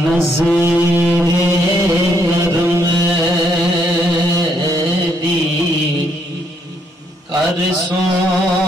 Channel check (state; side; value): normal; both; correlation 0.72